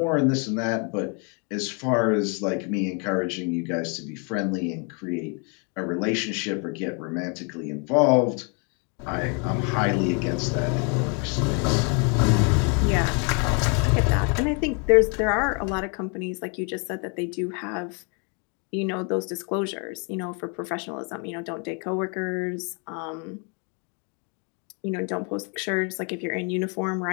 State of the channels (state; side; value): quieter; right; 36.3 dB